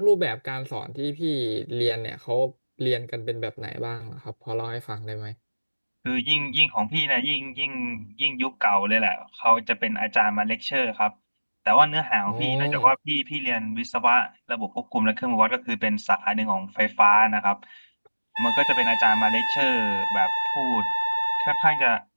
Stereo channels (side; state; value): both; inverted; correlation -1.00